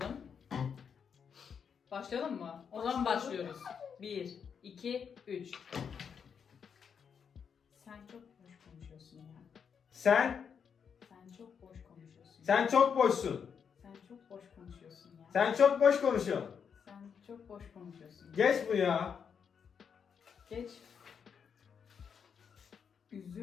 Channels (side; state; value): right; quieter; 6.9 dB